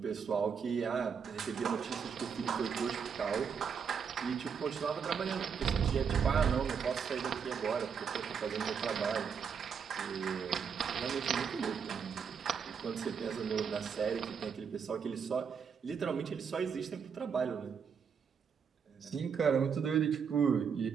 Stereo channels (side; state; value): left; quieter; 6.7 dB